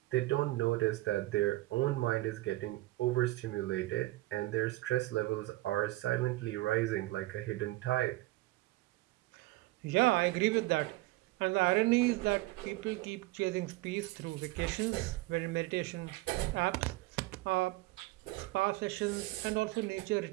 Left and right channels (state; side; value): quieter; left; 19.0 dB